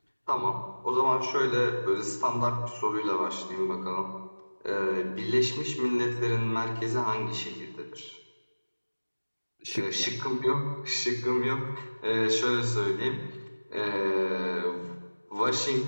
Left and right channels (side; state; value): both; inverted; correlation -1.00